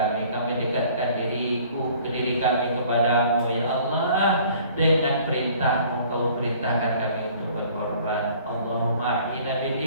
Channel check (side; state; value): both; inverted; correlation -0.53